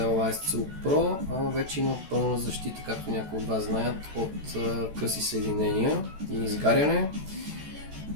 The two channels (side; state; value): left; late; 14 ms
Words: ISCO Pro, вече има пълна защита, както някои от вас знаят, от къси съединения и изгаряне.